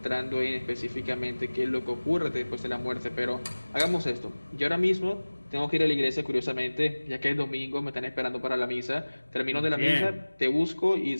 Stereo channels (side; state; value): both; inverted; correlation -1.00